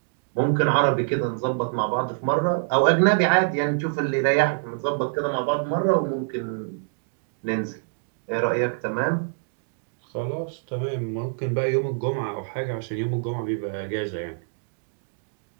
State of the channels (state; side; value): silent; left; digital silence